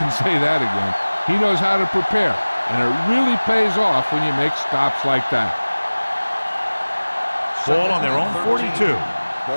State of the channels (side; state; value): both; inverted; correlation -1.00